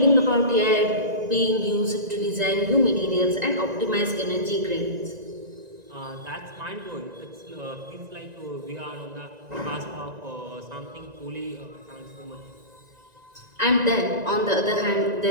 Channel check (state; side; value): late; left; 1.9 ms